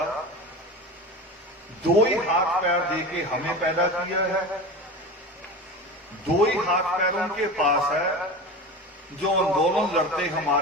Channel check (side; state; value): both; normal; correlation 0.30